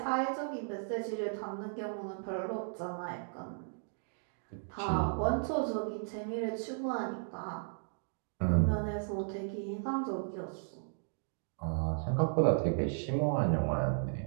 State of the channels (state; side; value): silent; left; digital silence